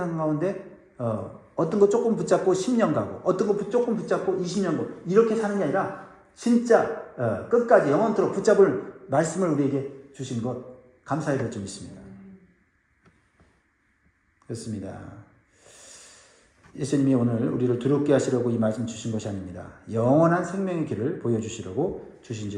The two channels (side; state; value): both; identical; correlation 1.00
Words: 가운데 어떤 거 조금 붙잡고 10년 가고 어떤 거 조금 붙잡고 20년 가고 이렇게 사는 게 아니라 진짜 끝까지 영원토록 붙잡을 말씀을 우리에게 주신 것 감사해야 될 점 있습니다. 그렇습니다. 예수님이 오늘 우리를 두렵게 하시려고 이 말씀 주신 것이 아닙니다. 영원한 생명의 길을 보여주시려고 주신